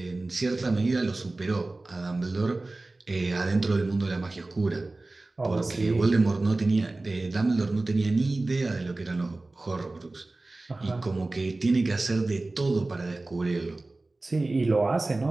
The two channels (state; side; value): quieter; left; 3.1 dB